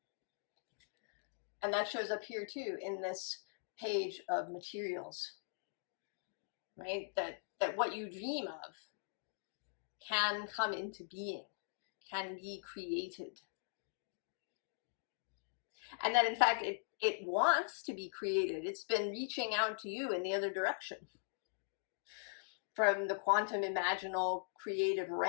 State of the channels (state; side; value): silent; right; digital silence